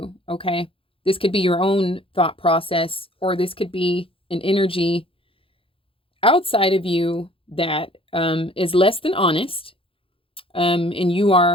okay? This could be your own thought process, or this could be an energy outside of you that is less than honest. And you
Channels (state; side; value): late; right; 0.26 ms